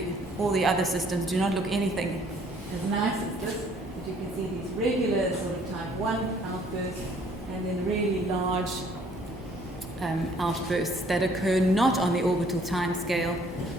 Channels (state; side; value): normal; both; correlation 0.60